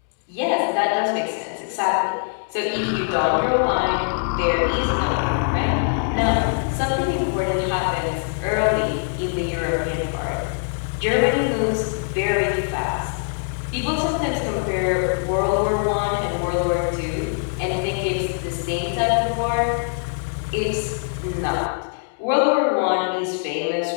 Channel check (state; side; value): silent; right; 64 dB below the other